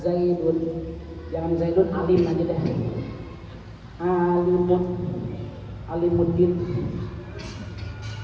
Zaidun, jangan Zaidun alim aja deh. Alimuddin.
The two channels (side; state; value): both; identical; correlation 1.00